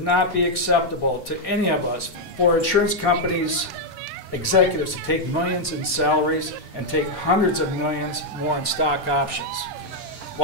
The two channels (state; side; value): normal; both; correlation -0.01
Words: not be acceptable to any of us for insurance companies' executives to take millions in salaries and take hundreds of millions more in stock options